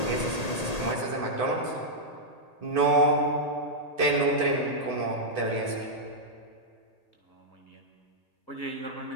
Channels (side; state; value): right; late; 1.8 ms